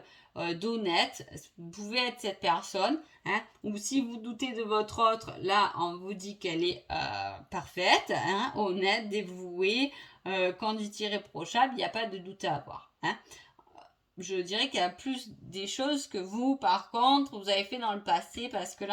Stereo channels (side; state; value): both; identical; correlation 1.00